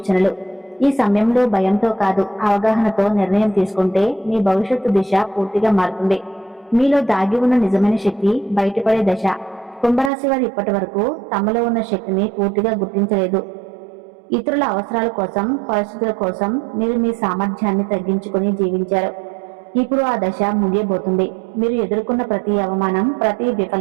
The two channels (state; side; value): drops out; left; at 10.1 s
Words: ఈ సమయంలో భయంతో కాదు, అవగాహనతో నిర్ణయం తీసుకుంటే మీ భవిష్యత్తు దిశ పూర్తిగా మారుతుంది. మీలో దాగి ఉన్న నిజమైన శక్తి బయటపడే దశ. కుంభరాశి వారు ఇప్పటి వరకు తమలో ఉన్న శక్తిని పూర్తిగా గుర్తించలేదు. ఇతరుల అవసరాల కోసం, పరిస్థితుల కోసం మీరు మీ సామర్థ్యాన్ని తగ్గించుకుని జీవించారు. ఇప్పుడు ఆ దశ ముగియబోతుంది. మీరు ఎదుర్కొన్న ప్రతి అవమానం, ప్రతి